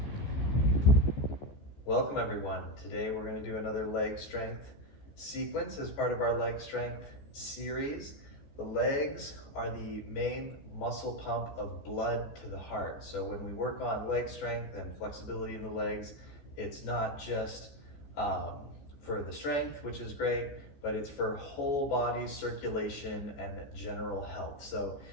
Welcome everyone. Today we're going to do another leg strength sequence as part of our leg strength series. The legs are the main muscle pump of blood to the heart. So when we work on leg strength and flexibility in the legs, it's not just for the strength, which is great, but it's for whole body circulation and general health. So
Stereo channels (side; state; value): right; late; 14 ms